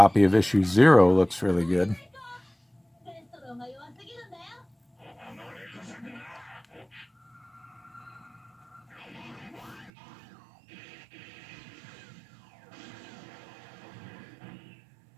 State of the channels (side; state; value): left; drops out; at 9.9 s